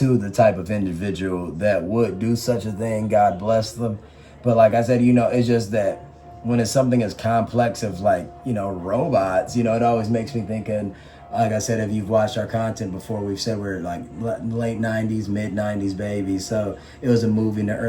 the type of individual that would do such a thing. God bless them. But like I said, it's just that when it's something as complex of like, robots, it always makes me think. And like I said, if you've watched our content before, we've said we're like late 90s, mid 90s babies. So it was a movie in the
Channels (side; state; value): both; identical; correlation 1.00